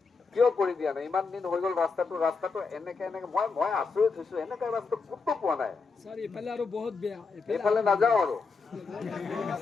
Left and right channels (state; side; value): quieter; right; 4.5 dB